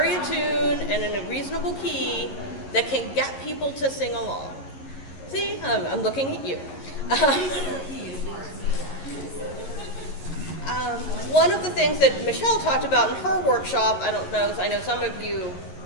a tune and in a reasonable key that can get people to sing along. See, I'm looking at you. One of the things that Michelle talked about in her workshop, I know some of you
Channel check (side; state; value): right; late; 11 ms